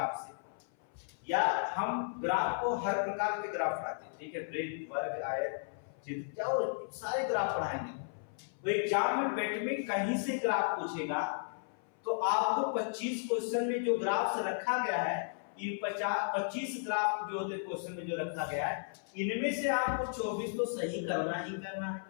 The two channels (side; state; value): right; silent; 55 dB below the other